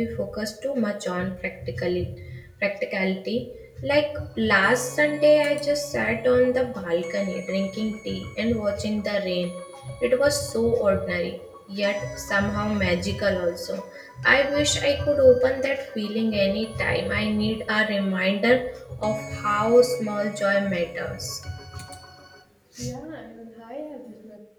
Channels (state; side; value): identical; both; correlation 1.00